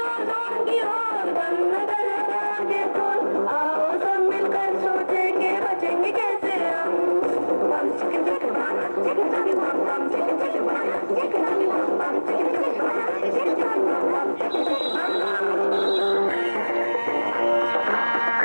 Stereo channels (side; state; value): both; inverted; correlation -1.00